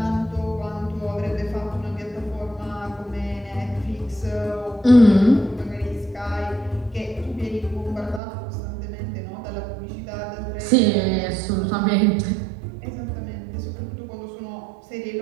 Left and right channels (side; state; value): left; drops out; at 8.2 s